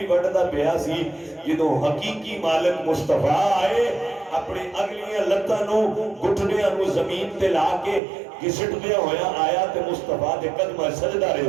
وڈدا پیا سی جدوں حقیقی مالک مصطفیٰ آئے اپنے اگلیاں لتاں نو گھٹنیاں نو زمین تے لا کے گھسٹدیا ہویا آیا تے مصطفیٰ دے قدماں سجدہ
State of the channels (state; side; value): drops out; left; at 8.0 s